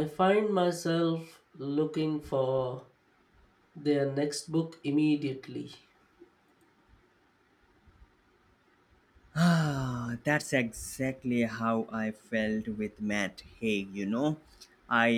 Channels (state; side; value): identical; both; correlation 1.00